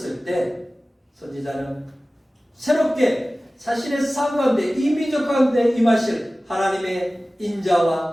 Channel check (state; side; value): normal; both; correlation 0.97